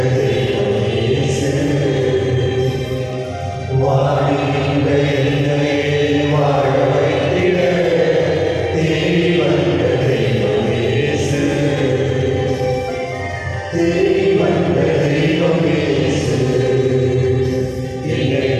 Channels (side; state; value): both; identical; correlation 1.00